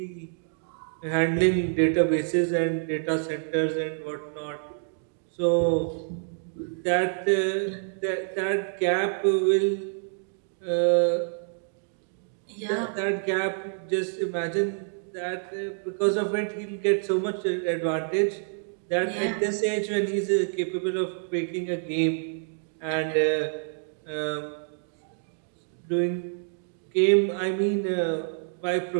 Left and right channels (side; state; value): left; silent; 60 dB below the other